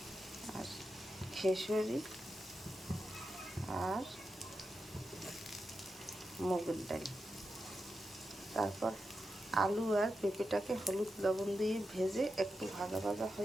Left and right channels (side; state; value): both; normal; correlation 0.89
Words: আর খেসুরি আর মুগের ডাল। তারপর আলু আর পেঁপেটাকে হলুদ লবণ দিয়ে ভেজে একটু ভাজা ভাজা